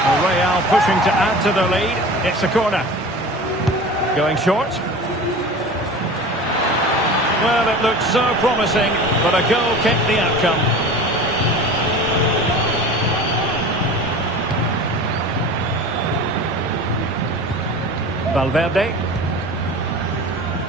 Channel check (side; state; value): both; normal; correlation 0.37